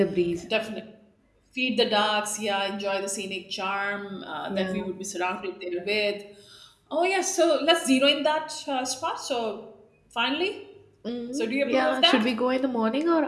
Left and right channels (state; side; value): identical; both; correlation 1.00